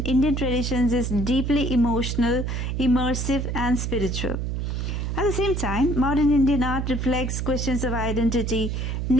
Indian traditions is deeply emotional, immersive, and spiritual. At the same time, modern Indian art reflects questions of identity,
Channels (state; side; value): noise; right; hum, 2 dB below the sound